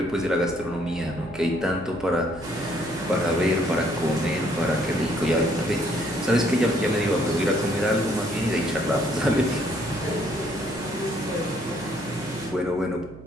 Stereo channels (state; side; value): noise; right; hum, 16 dB below the sound